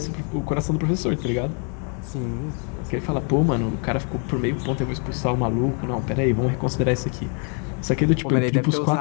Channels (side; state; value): right; quieter; 39.8 dB